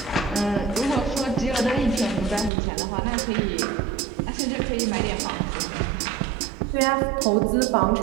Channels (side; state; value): left; drops out; at 2.5 s